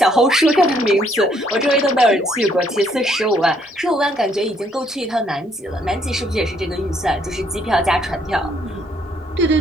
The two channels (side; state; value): both; normal; correlation 0.68